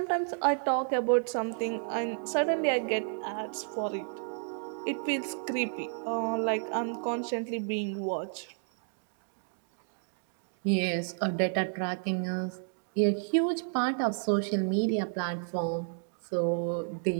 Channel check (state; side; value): silent; left; digital silence